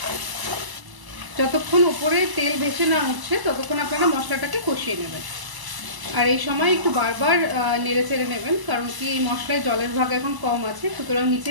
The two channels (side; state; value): left; late; 1.0 ms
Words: যতক্ষণ উপরে তেল ভেসে না উঠছে ততক্ষণ আপনারা মশলাটাকে কষিয়ে নেবেন। আর এই সময় একটু বারবার নেড়ে চেড়ে নেবেন, কারণ কি এই মশলায় জলের ভাগ এখন কম আছে, সুতরাং নিচে